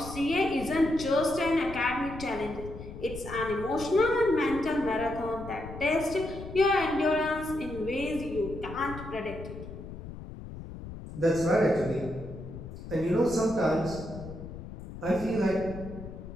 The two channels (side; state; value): left; noise; rumble, 11 dB below the sound